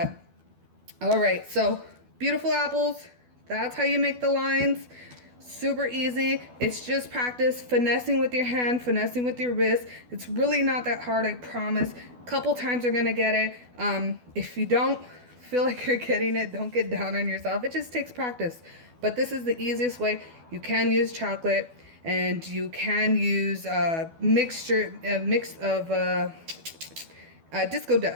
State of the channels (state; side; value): late; left; 12 ms